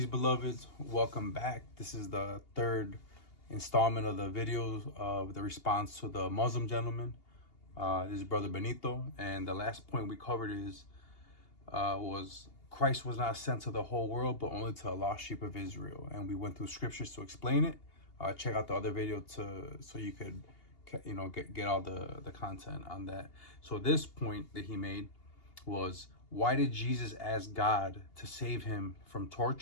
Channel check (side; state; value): right; late; 2.8 ms